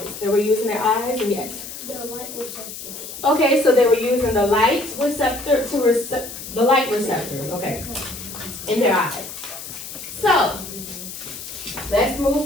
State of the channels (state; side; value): noise; left; hiss, 11 dB below the sound